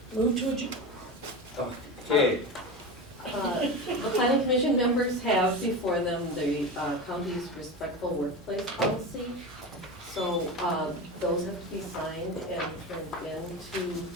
Move to adjourn. Okay, The planning commission members have before them the county's respectful workplace policy. So those have to be signed and turned into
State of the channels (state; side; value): normal; both; correlation 0.24